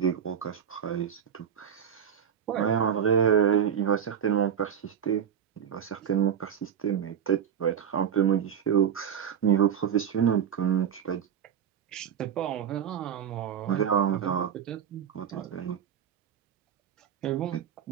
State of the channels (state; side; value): quieter; left; 8.5 dB